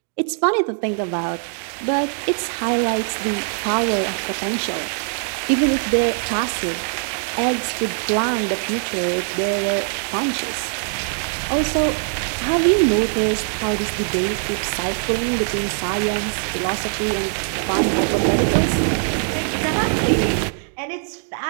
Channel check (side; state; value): left; silent; digital silence